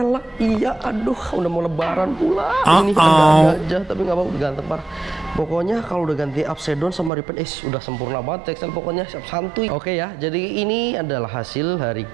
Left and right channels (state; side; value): drops out; left; at 7.1 s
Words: Iya, aduh, udah mau lebaran pula. Ini ada aja tapi nggak mau ganteng parah. Pokoknya kalau udah ganti upside down sama repaint, udah sempurna banget CXL pokoknya. Sap Santuy. Oke ya, jadi ini adalah hasil hari